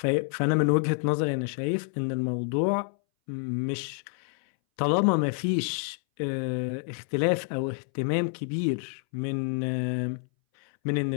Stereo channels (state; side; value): silent; right; 59 dB below the other